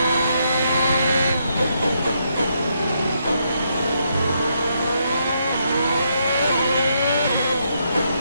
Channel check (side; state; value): both; inverted; correlation -0.77